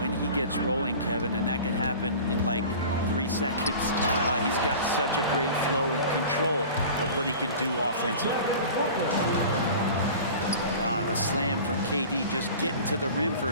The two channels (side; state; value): both; inverted; correlation -0.39